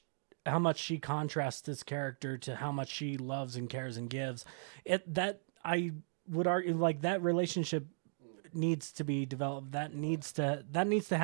she contrasts this character to how much she loves and cares and gives, that I would argue like that relationship needs to be developed. That needs to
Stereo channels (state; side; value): silent; left; digital silence